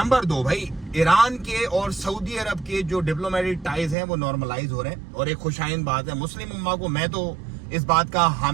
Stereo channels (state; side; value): drops out; left; at 4.0 s